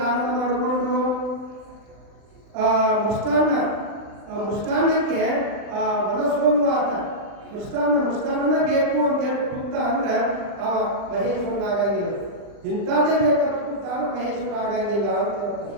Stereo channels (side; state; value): left; late; 39 ms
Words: ಮಾಡಿಕೊಂಡು ಮೃಷ್ಟಾನ್ನಕ್ಕೆ ಮನಸೋಲು ಆತ ಮೃಷ್ಟಾನ್ನ ಬೇಕು ಅಂತ ಹೇಳಿ ಕೂತ ಅಂದ್ರೆ ಅವ ಮಹೇಶ್ವರನ ಆಗಂಗಿಲ್ಲ. ಇಂಥದ್ದೇ ಬೇಕಂತ ಕೂತ ಅಂದ್ರೆ ಮಹೇಶ್ವರ ಆಗಂಗಿಲ್ಲ ಅಂತ ಹೇಳ್ತಾರೆ.